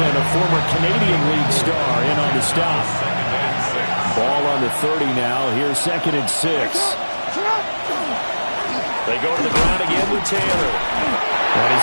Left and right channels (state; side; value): inverted; both; correlation -1.00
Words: a former Canadian League star, in on the stop. Ball on the 30 now. Here's 2nd and 6. They go to the ground again with Taylor. And